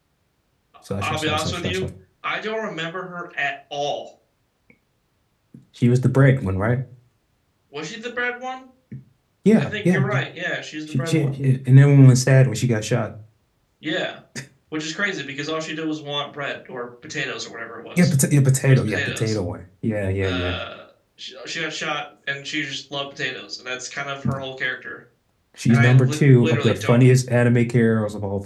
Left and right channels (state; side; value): identical; both; correlation 1.00